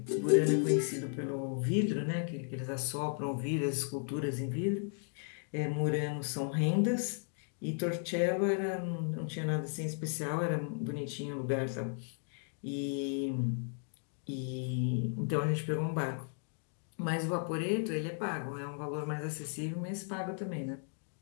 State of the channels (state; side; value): silent; right; 54 dB below the other